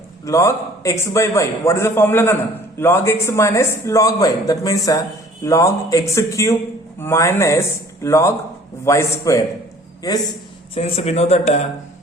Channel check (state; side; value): normal; both; correlation 0.53